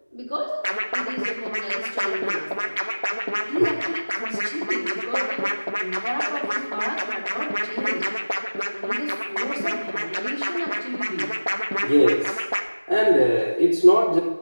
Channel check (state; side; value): inverted; both; correlation -1.00